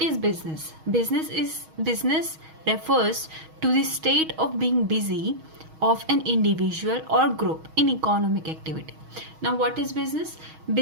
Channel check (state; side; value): late; left; 6.3 ms